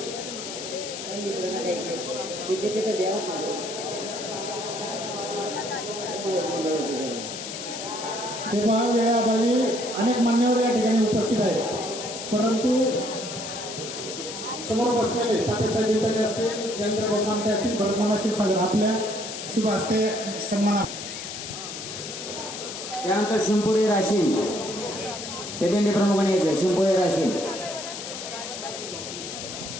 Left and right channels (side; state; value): left; noise; hiss, 8 dB below the sound